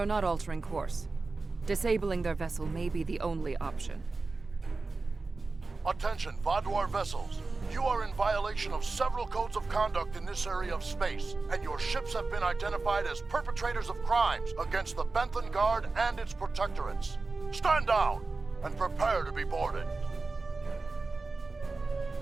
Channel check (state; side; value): quieter; left; 3.7 dB